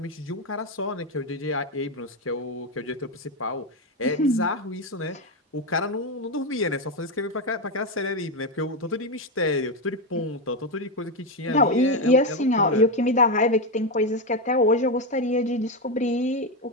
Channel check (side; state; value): both; normal; correlation 0.09